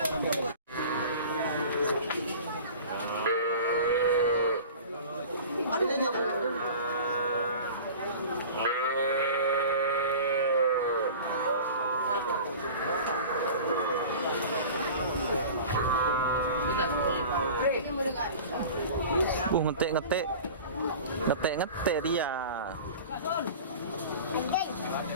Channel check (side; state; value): both; inverted; correlation -0.38